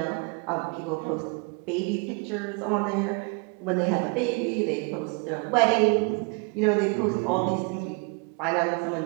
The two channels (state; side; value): quieter; left; 32.8 dB